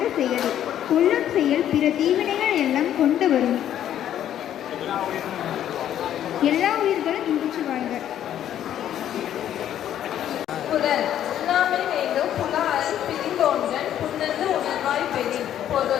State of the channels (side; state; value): right; quieter; 10.9 dB